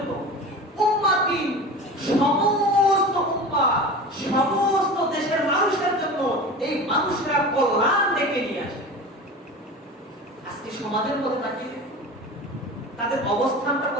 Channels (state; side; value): normal; both; correlation 0.33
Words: উম্মাতিন, সমস্ত উম্মাহ, সমস্ত দেশের মানুষের জন্য এই মানুষরা কল্যাণ ডেকে নিয়ে আসে। আজকে সমাজের মধ্যে তাকিয়ে তাদের অবস্থানটা